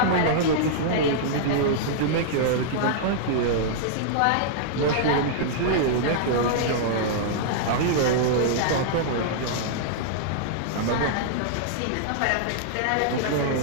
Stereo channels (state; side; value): different; both; correlation -0.01